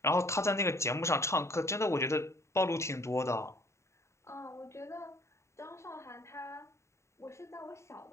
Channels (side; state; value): right; late; 0.14 ms